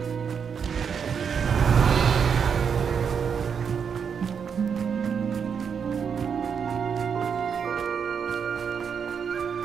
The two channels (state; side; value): quieter; left; 6.8 dB